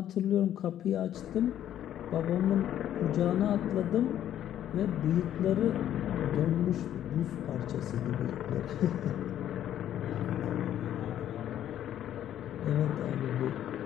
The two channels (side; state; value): right; quieter; 11.2 dB